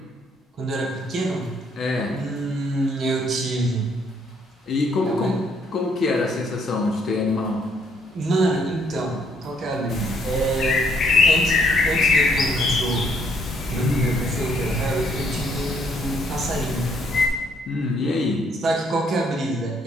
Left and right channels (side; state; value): both; normal; correlation 0.68